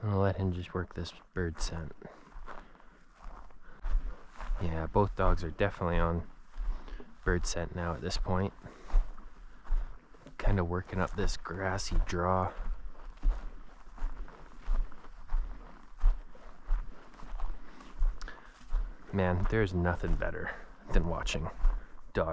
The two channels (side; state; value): both; identical; correlation 1.00